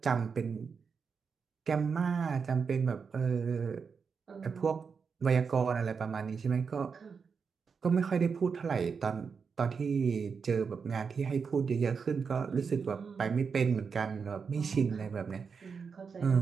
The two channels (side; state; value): left; quieter; 5.7 dB